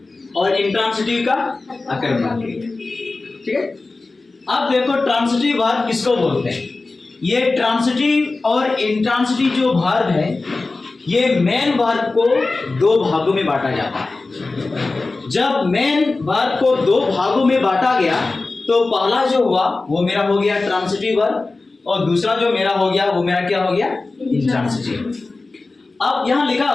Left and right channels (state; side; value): quieter; right; 3.5 dB